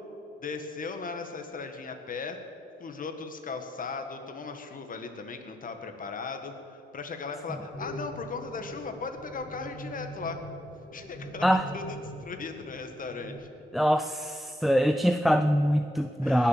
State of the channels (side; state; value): both; normal; correlation 0.82